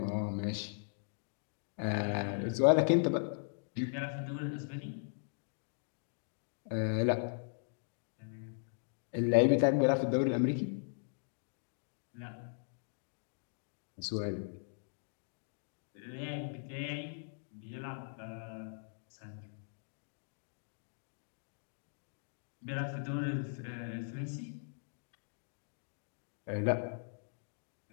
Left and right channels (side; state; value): right; silent; digital silence